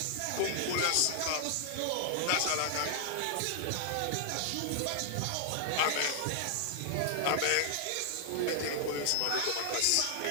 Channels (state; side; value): different; both; correlation 0.00